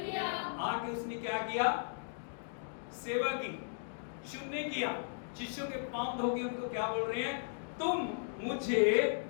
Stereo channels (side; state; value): right; silent; digital silence